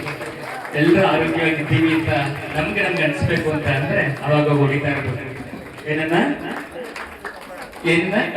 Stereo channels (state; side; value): identical; both; correlation 1.00